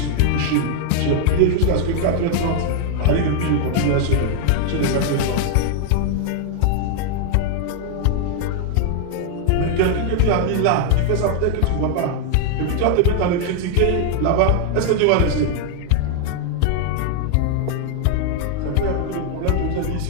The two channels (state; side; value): different; both; correlation 0.00